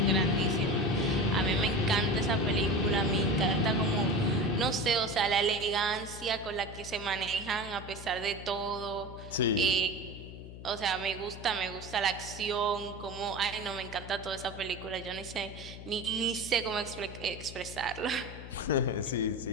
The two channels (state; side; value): noise; left; hum, 13 dB below the sound